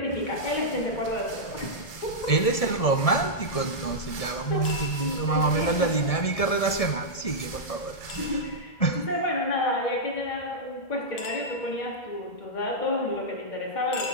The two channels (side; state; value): right; late; 1.7 ms